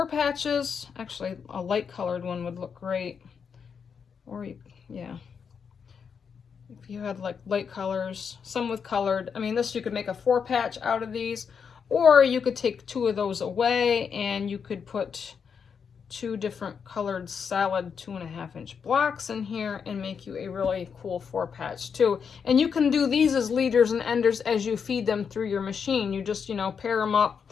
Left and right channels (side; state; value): right; quieter; 6.5 dB